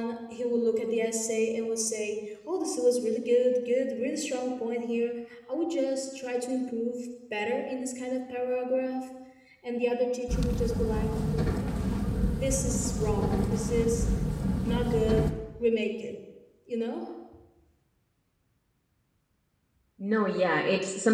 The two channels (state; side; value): identical; both; correlation 1.00